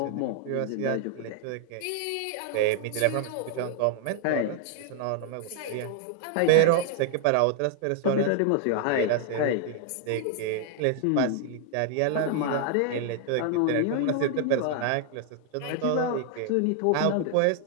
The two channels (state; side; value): different; both; correlation 0.00